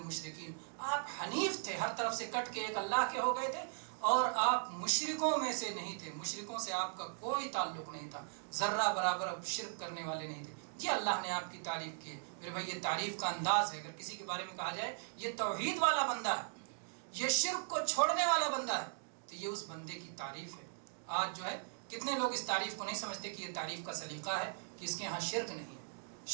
آپ حنیف تھے، ہر طرف سے کٹ کے ایک اللہ کے ہو گئے تھے، اور آپ مشرکوں میں سے نہیں تھے، مشرکوں سے آپ کا کوئی تعلق نہیں تھا، ذرہ برابر شرک کرنے والے نہیں تھے۔ یہ اللہ نے آپ کی تعریف کی ہے میرے بھائی، یہ تعریف کا انداز ہے۔ اگر کسی کے بارے میں کہا جائے یہ توحید والا بندہ ہے، یہ شرک کو چھوڑنے والا بندہ ہے، تو یہ اس بندے کی تعریف ہے۔ آج جو ہے کتنے لوگ اس تعریف کو نہیں سمجھتے کہ یہ تعریف کا سلیقہ ہے کہ اس کے ہاں شرک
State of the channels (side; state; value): left; silent; digital silence